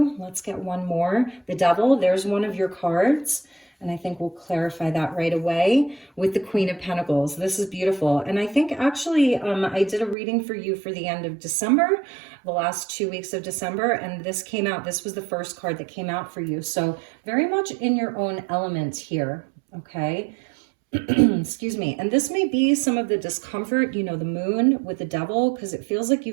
Let's get one more. The Devil, there's one of your cards. And I think we'll clarify that right away with the Queen of Pentacles. This is beautiful. And I think actually I did a reading for you for the end of December, the last 2 weeks of December, and this came out. This was the first card that came out for you. So very much in your own element here, okay? Excuse me. And this may be some of the discomfort, you know, the moon with the Devil, because it feels like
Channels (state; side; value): drops out; left; at 10.2 s